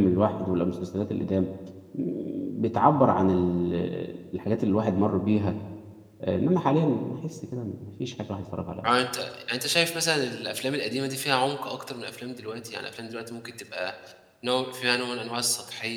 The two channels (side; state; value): both; identical; correlation 1.00